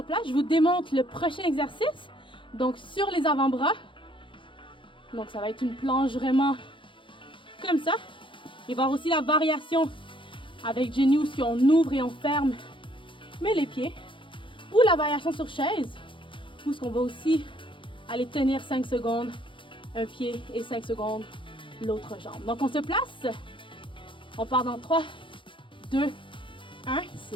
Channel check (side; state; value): right; late; 0.24 ms